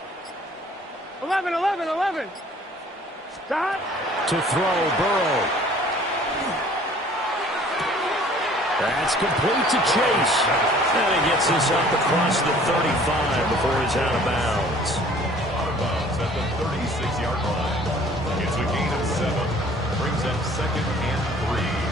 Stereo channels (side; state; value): both; normal; correlation 0.53